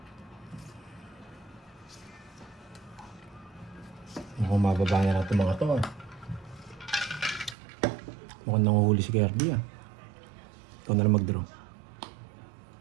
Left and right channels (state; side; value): drops out; left; at 7.6 s